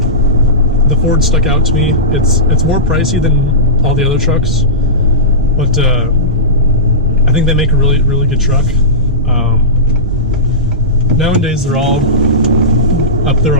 The Ford stuck out to me. It's more pricey than all the other trucks, but I think they make a really, really good truck. Nowadays they're all up there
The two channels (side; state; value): both; normal; correlation -0.17